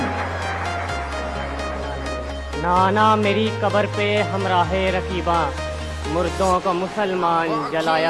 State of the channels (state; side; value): identical; both; correlation 1.00